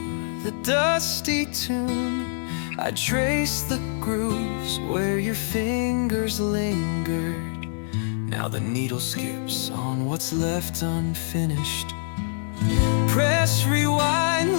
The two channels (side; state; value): right; silent; digital silence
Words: the dusty tune. I traced the grooves where your fingers lingered. Now the needle skips on what's left unfinished. Press rewind,